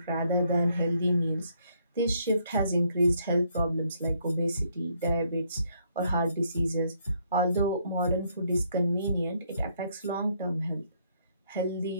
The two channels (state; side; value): inverted; both; correlation -0.70